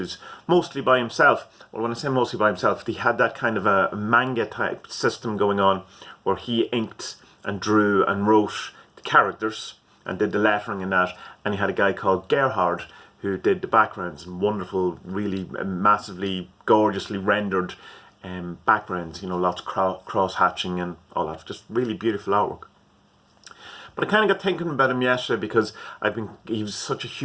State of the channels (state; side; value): identical; both; correlation 1.00